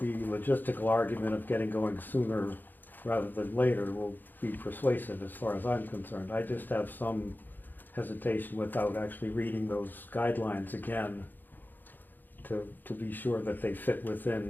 logistical argument of getting going sooner rather than later will be persuasive as far as I'm concerned. I just have some hesitation without actually reading those guidelines again to be sure that they fit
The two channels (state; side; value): late; right; 0.089 ms